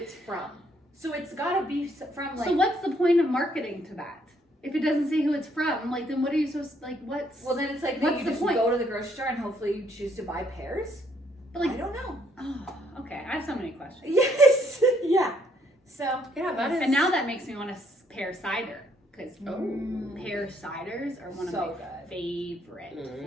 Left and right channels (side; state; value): both; normal; correlation 0.69